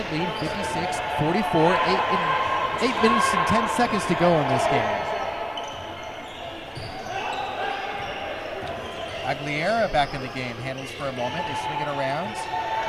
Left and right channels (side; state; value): both; identical; correlation 1.00